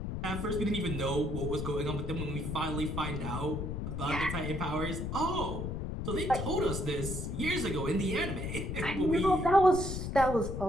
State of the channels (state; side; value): noise; left; rumble, 4 dB below the sound